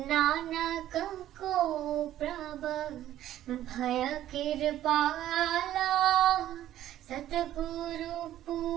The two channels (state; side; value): quieter; left; 12.8 dB